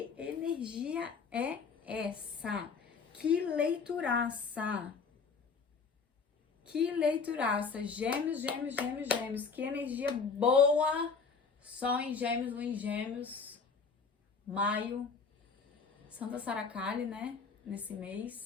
energia é essa? Que leituraça! Que leituraça! Gêmeos, gêmeos, gêmeos, gêmeos. Que energia boa! Sol em gêmeos, lua em gêmeos. Maio. Santa Saracali, né? Nesse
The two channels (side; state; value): right; quieter; 5.2 dB